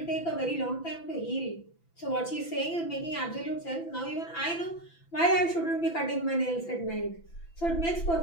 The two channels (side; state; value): right; late; 6.0 ms